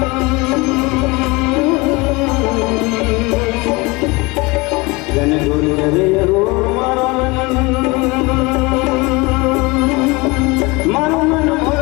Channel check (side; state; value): right; quieter; 24.8 dB